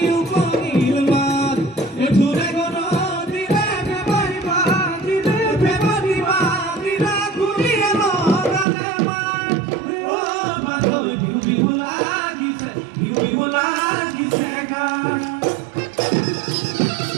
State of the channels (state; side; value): drops out; left; at 8.7 s